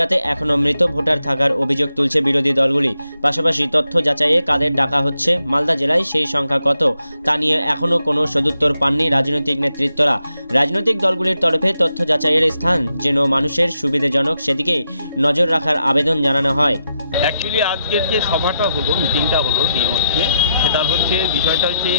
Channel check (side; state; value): both; inverted; correlation -0.83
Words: এখনও মৃত ভোটার থাকার অভিযোগ তুলছে বিরোধী দলগুলি। পাশাপাশি তথ্য যাচাইয়ে কাদের ডাকা হচ্ছে, মালদা জেলায় সেই সংখ্যা কত তা নিয়ে এখনও কোনো সদুত্তর পাননি রাজনৈতিক নেতৃত্বরা। রাজনৈতিক দলগুলির তরফে তথ্য যাচাইয়ের স্থান যেন মানুষের সুবিধাজনক সেদিকে নজর রাখার আবেদন জানানো হয়। অ্যাকচুয়ালি আজকের যে সভাটা হলো, মিটিংটা হলো ডিএমওতে, সেটার বিষয়টা হচ্ছে